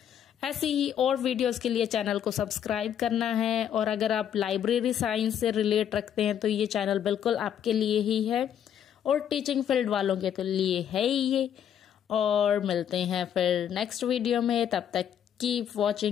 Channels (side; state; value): right; quieter; 9.4 dB